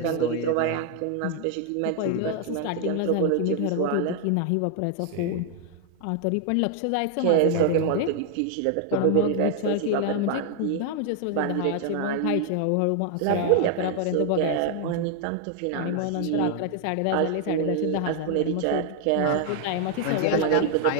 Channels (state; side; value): different; both; correlation 0.00